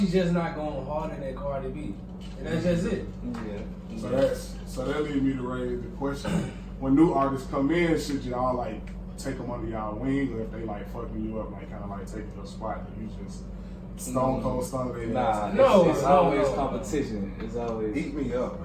just not going harder than Cardi B, and that's just it. So that leads me to raise the question: when new artists come in, should y'all like take them under y'all wing, or if they like fucking you up, like kind of like taking your spot, that you just stone cold stun their Nah, ass? it's always competition. It's always Eat me up,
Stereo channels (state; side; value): identical; both; correlation 1.00